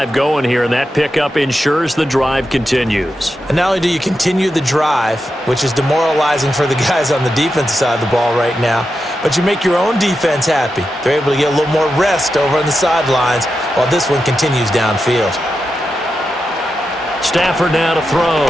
going here, and that pickup ensures the drive continues. And not only do you continue the drive, which is demoralizing for the guys on the defensive side of the ball right now, but you make your own defense happy. They're able to get a little more rest over on the sidelines while this one continues downfield. Stafford now to throw.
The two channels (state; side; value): normal; both; correlation 0.88